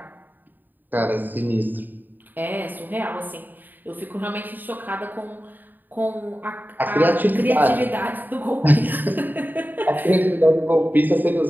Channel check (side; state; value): left; late; 0.089 ms